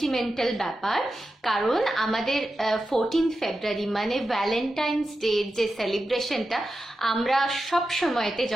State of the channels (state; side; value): normal; both; correlation 0.91